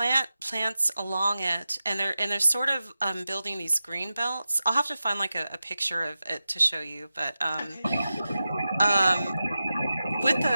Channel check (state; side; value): inverted; both; correlation -0.93